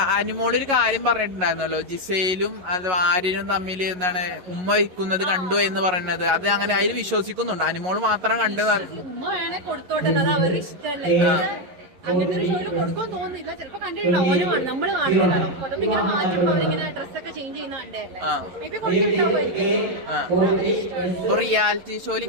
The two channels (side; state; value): left; late; 11 ms